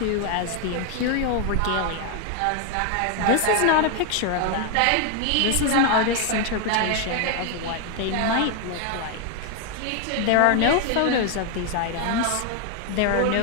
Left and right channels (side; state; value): both; different; correlation 0.00